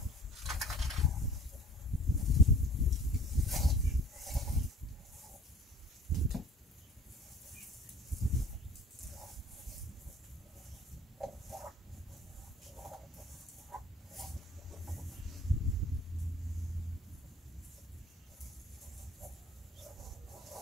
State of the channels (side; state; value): both; normal; correlation 0.47